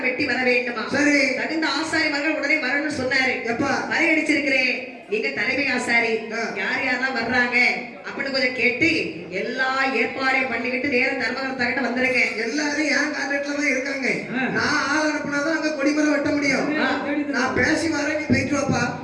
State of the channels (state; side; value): identical; both; correlation 1.00